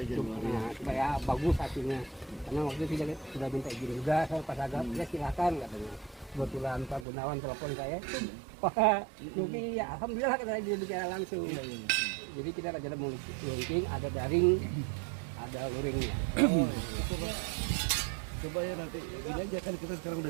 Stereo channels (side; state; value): left; drops out; at 7.1 s